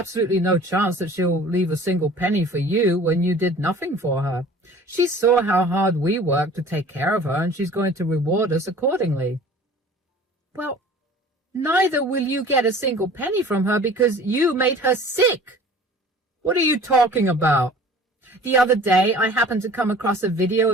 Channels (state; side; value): normal; both; correlation 0.46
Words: no chance that she'll leave a single penny for you when you did nothing for her. She saw how hard we worked to take care of her, and she's going to reward us accordingly. Well, neither will you get a single penny from her because you made her sick. What are you talking about? The other day, I happened to come across a video